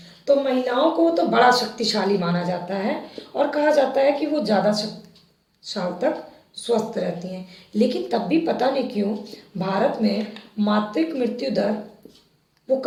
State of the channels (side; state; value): both; identical; correlation 1.00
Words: तो महिलाओं को तो बड़ा शक्तिशाली माना जाता है और कहा जाता है कि वो ज़्यादा साल तक स्वस्थ रहती हैं। लेकिन तब भी पता नहीं क्यों भारत में मातृत्व मृत्यु दर वो